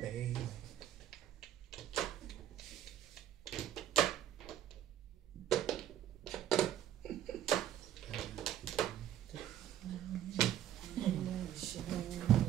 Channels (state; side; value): quieter; left; 11.4 dB